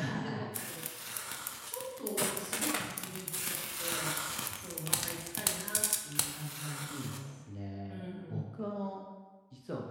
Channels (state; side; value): identical; both; correlation 1.00